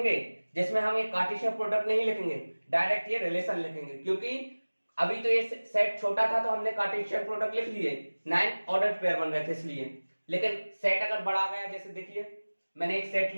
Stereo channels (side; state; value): both; inverted; correlation -1.00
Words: जिसमें हम ये कार्टेशियन प्रोडक्ट नहीं लिखेंगे, डायरेक्ट ये रिलेशन लिखेंगे। क्योंकि अभी तो ये सेट छोटा था तो हमने कार्टेशियन प्रोडक्ट लिख लिए, 9 ऑर्डर पेयर बन रहे थे इसलिए। लेकिन सेट अगर बढ़ा गया, जैसे देखिए मैंने एक सेट